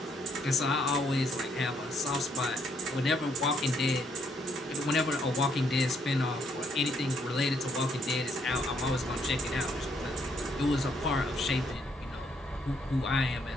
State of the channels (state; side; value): normal; both; correlation 0.71